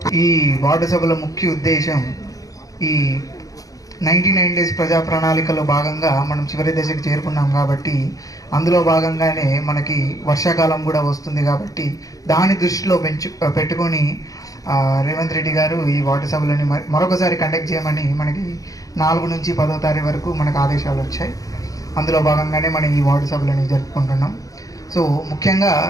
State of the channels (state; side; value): late; right; 0.17 ms